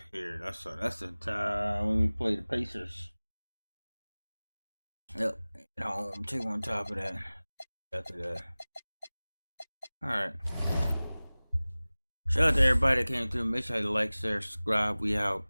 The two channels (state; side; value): inverted; both; correlation -0.99